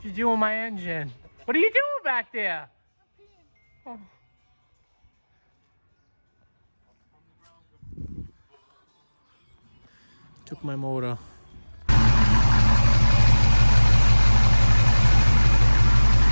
you doing with my engine? What are you doing back there? Oh. Took my motor.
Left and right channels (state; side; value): inverted; both; correlation -1.00